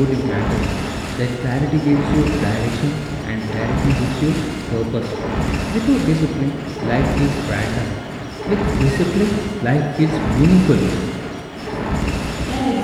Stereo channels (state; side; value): identical; both; correlation 1.00